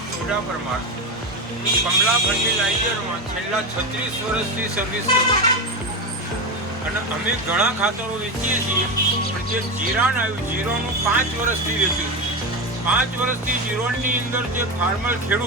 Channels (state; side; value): normal; both; correlation 0.17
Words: ઉડા પરમાર. હું કમલા ફર્ટિલાઇઝરમાં છેલ્લા 36 વર્ષથી સર્વિસ કરું છું અને અમે ઘણા ખાતરો વેચીએ છીએ. પણ જે જીરાણ આવ્યું, જીરોનું 5 વર્ષથી વેચ્યું છે. 5 વર્ષથી જીરોની અંદર જે ફાર્મર